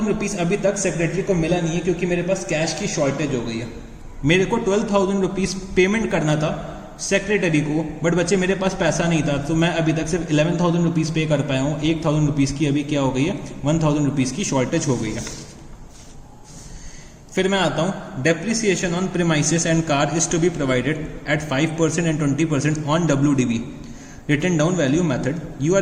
रुपीज अभी तक सेक्रेटरी को मिला नहीं है क्योंकि मेरे पास कैश की शॉर्टेज हो गई है। मेरे को 12,000 रुपीज पेमेंट करना था सेक्रेटरी को, बट बच्चे मेरे पास पैसा नहीं था, तो मैं अभी तक सिर्फ 11,000 रुपीज पे कर पाया हूँ। 1,000 रुपीज की अभी क्या हो गई है 1,000 रुपीज की शॉर्टेज हो गई है। फिर मैं आता हूं, depreciation on premises and car is to be provided at 5% and 20% on WDV written down value method. You are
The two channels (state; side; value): identical; both; correlation 1.00